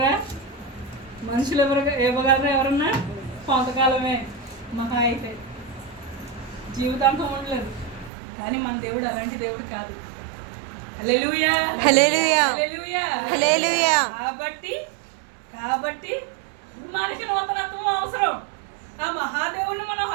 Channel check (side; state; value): left; drops out; at 8.1 s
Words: మనుషులు ఇవ్వగలరా? ఎవరన్నా కొంతకాలమే, మహా అయితే జీవితాంతం ఉండలేదు. కానీ మన దేవుడు అలాంటి దేవుడు కాదు. హల్లెలూయా. కాబట్టి మనకి నూతనత్వం అవసరం. ఆ మహాదేవుడిని మనం